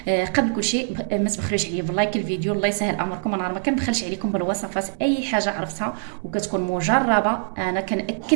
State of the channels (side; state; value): left; silent; 62 dB below the other